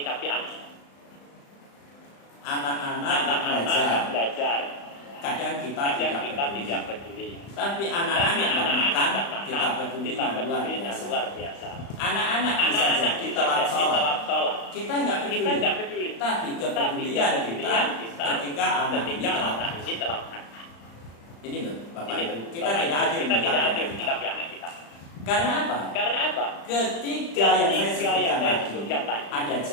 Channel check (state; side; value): late; right; 35 ms